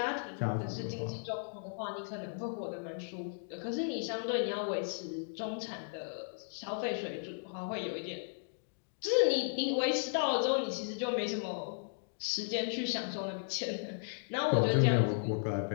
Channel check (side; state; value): right; silent; digital silence